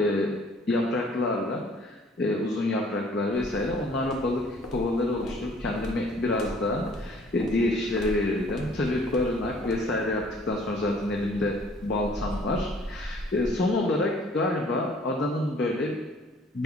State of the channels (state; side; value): normal; both; correlation 0.56